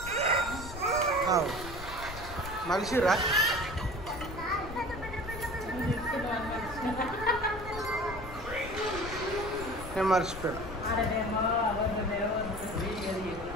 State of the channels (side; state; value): left; noise; rumble, 11 dB below the sound